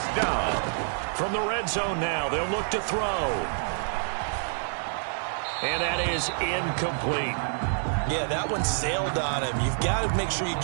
down. From the red zone now, they'll look to throw. And that is incomplete. Yeah, that one sailed on him. You've got to make sure you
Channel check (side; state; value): left; silent; digital silence